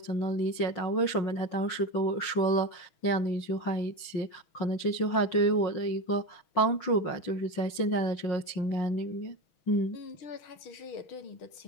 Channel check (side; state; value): right; late; 6.2 ms